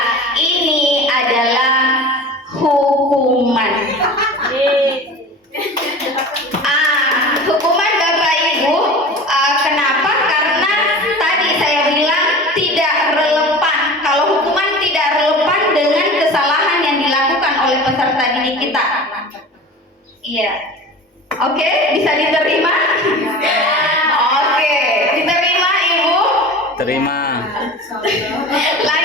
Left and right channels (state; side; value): normal; both; correlation 0.36